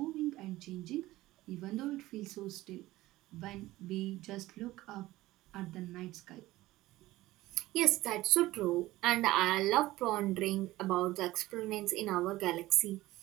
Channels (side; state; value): left; quieter; 17.3 dB